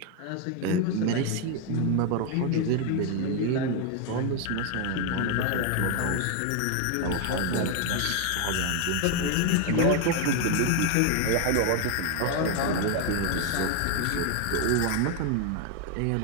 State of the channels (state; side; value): different; both; correlation 0.01